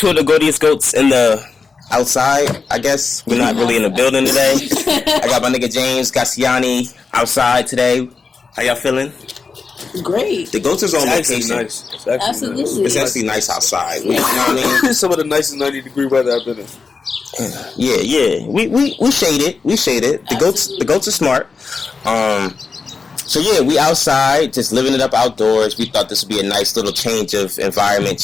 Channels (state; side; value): quieter; right; 4.7 dB